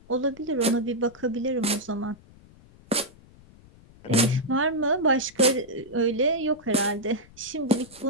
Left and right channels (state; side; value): noise; left; rumble, 24 dB below the sound